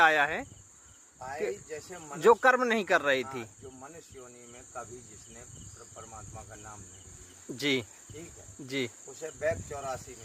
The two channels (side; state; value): both; identical; correlation 1.00